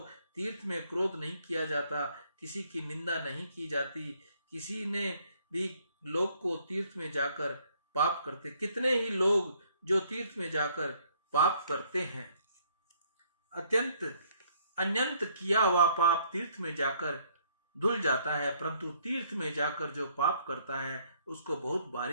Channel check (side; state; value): both; inverted; correlation -0.65